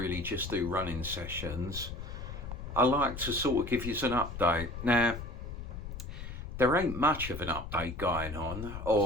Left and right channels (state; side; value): noise; left; rumble, 8 dB below the sound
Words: just do running sessions. I like to sort of give you an update. Now, there ain't much of an update going on,